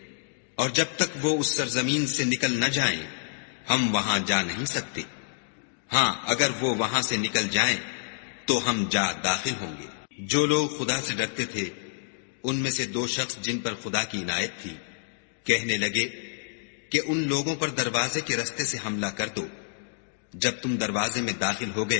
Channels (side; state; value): right; silent; digital silence